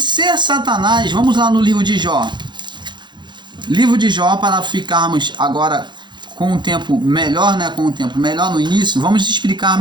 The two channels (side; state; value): left; late; 0.22 ms